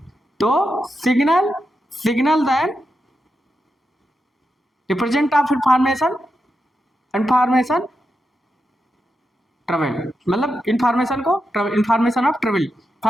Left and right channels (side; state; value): both; normal; correlation 0.87